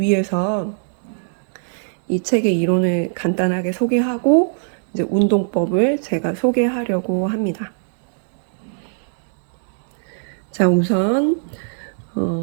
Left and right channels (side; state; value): left; silent; digital silence